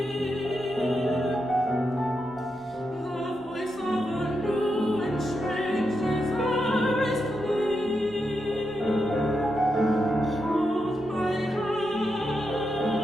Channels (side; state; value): both; normal; correlation 0.85